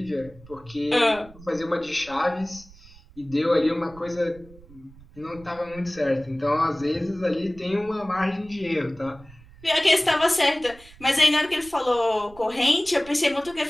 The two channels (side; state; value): right; noise; rumble, 22 dB below the sound